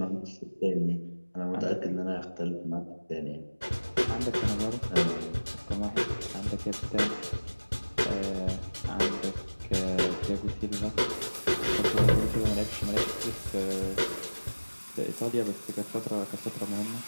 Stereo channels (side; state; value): both; inverted; correlation -1.00